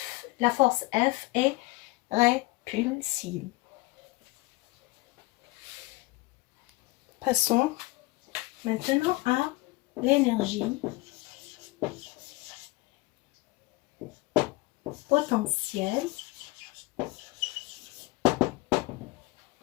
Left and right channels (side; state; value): right; quieter; 22.4 dB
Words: la force F est répulsive. Passons maintenant à l'énergie potentielle,